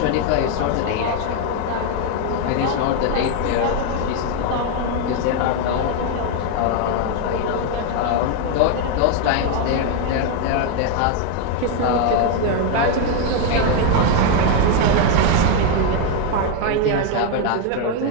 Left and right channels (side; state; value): both; different; correlation 0.01